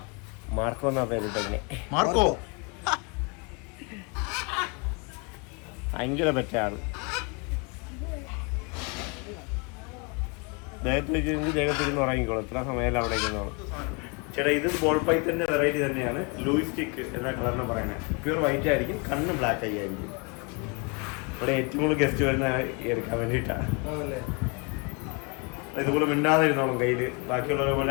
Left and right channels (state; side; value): quieter; right; 32.3 dB